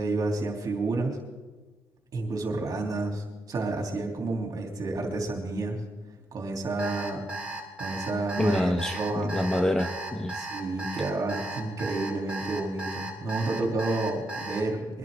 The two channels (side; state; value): both; normal; correlation 0.82